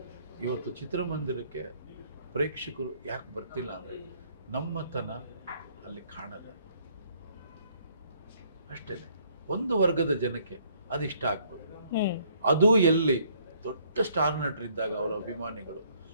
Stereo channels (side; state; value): both; inverted; correlation -0.64